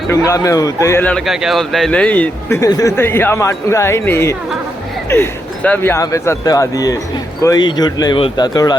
मैं हूँ। तो ये लड़का क्या बोलता है, नहीं तो यहाँ माटूंगा ही नहीं। सब यहाँ पे सत्यवादी है, कोई झूठ नहीं बोलता थोड़ा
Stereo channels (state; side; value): normal; both; correlation 0.81